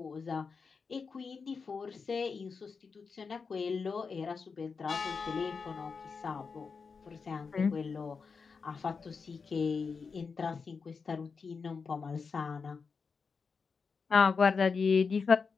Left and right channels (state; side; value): quieter; right; 5.2 dB